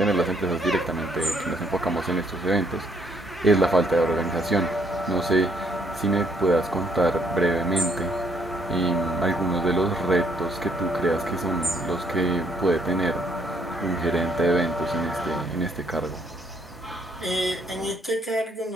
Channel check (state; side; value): normal; both; correlation 0.69